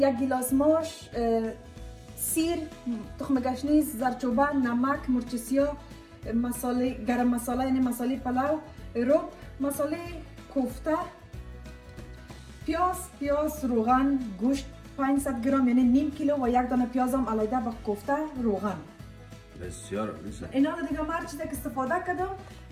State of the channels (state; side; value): identical; both; correlation 1.00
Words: 1 گیلاس ماش، سیر، تخم گشنیز، زردچوبه، نمک، مرچ سیاه، مساله گرم مساله یعنی مساله پلاو، رب، مساله کوفته، پیاز، روغن، گوشت 500 گرم یعنی نیم کیلو و 1 دانه پیاز هم علیده با کوفته روغن. بسیار عالی. اینا رو دیگه هر چیزی که استفاده کردم